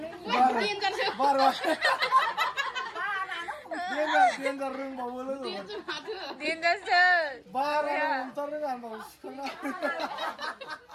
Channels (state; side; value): identical; both; correlation 1.00